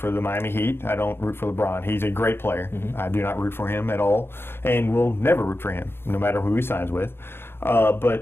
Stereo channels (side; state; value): right; late; 0.11 ms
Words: the Miami Heat. I don't root for LeBron. He's a great player. Mm-hmm. I do not root for him at all, and will never root for him, no matter who he signs with.